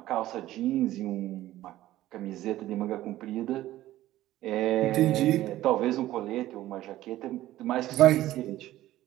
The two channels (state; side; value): quieter; left; 14.9 dB